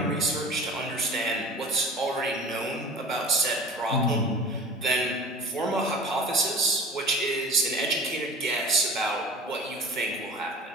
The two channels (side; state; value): both; normal; correlation 0.38